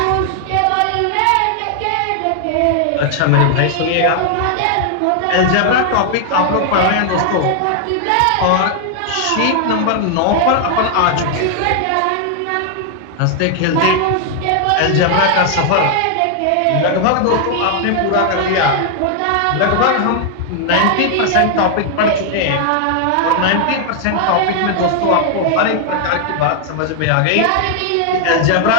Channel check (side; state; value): both; different; correlation 0.00